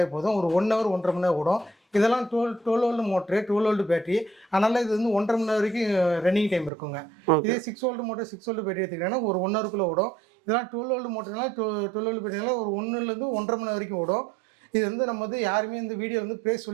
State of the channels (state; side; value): drops out; left; at 6.7 s